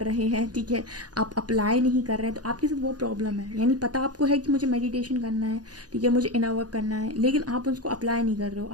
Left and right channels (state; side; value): late; left; 0.69 ms